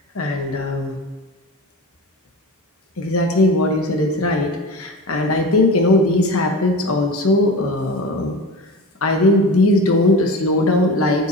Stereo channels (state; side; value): normal; both; correlation 0.30